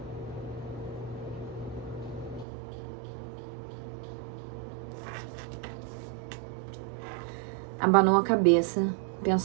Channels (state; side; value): drops out; left; at 2.5 s